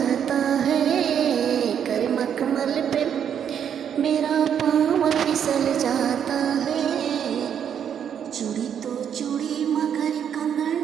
है, कर मखमल पे मेरा पाँव फिसल जाता है, चूड़ी तो चूड़ी मगर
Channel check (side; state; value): left; quieter; 8.5 dB